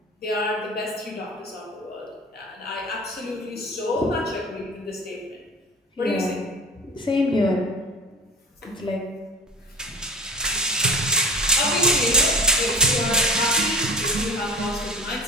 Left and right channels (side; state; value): both; normal; correlation 0.36